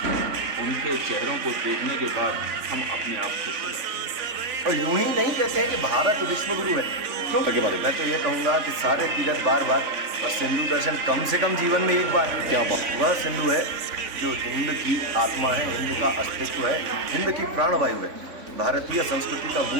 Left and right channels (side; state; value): left; late; 3.5 ms